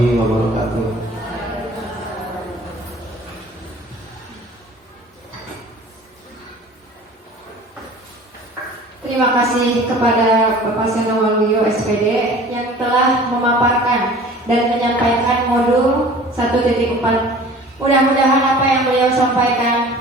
wabarakatuh. Terima kasih kepada Bapak Seno Waluyo SPD yang telah memaparkan dan menyampaikan modul 1.4. Mudah-mudahan apa yang beliau sampaikan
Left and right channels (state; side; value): normal; both; correlation 0.45